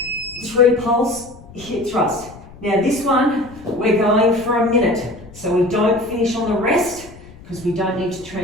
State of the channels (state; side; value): noise; left; rumble, 20 dB below the sound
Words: 3 pulse hip thrust. Now this one, we're going for a minute. So we don't finish on the rest because we don't need to